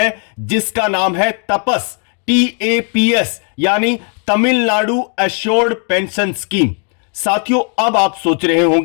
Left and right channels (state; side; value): quieter; right; 37.8 dB